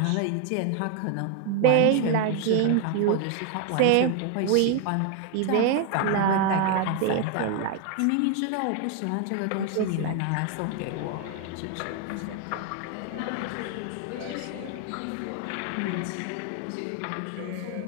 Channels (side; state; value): both; different; correlation 0.01